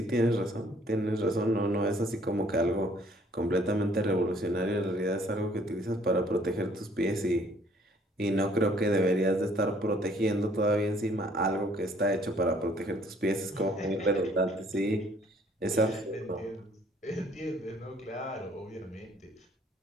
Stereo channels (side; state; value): both; normal; correlation 0.60